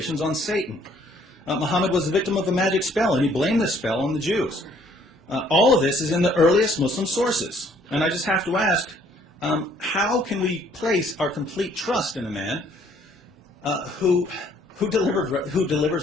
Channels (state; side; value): normal; both; correlation 0.62